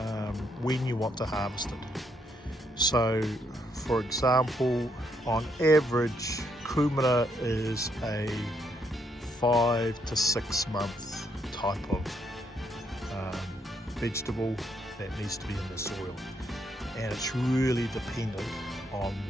when you want to harvest it? So for example, on average kumara is a 5 to 6 month type of vegetable that needs to be in the soil, and it's really dependent on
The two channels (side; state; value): both; normal; correlation 0.74